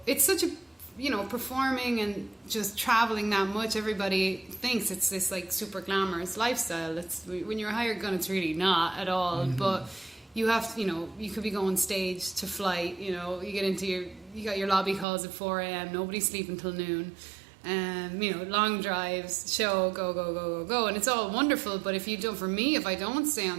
it's such a performing and just traveling that much, everybody thinks it's this like super glamorous lifestyle. When you're a hired gun, it's really not at all. But you have to, you could be going stage to flight, you get into you got your lobby calls at 4 a.m, nobody's sleeping till noon, long drives, show, go, and it's all wonderful. But if I don't stay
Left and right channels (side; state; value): left; drops out; at 15.1 s